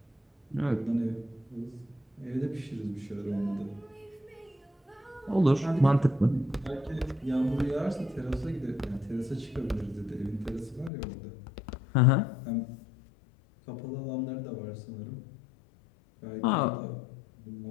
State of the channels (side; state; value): right; drops out; at 10.9 s